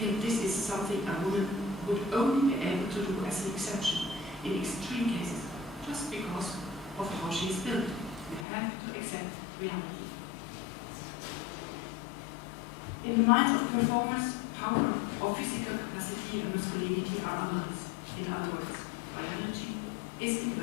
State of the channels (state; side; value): drops out; right; at 8.5 s